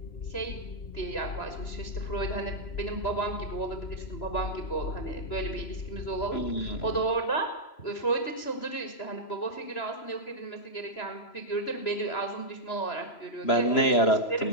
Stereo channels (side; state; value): right; late; 3.0 ms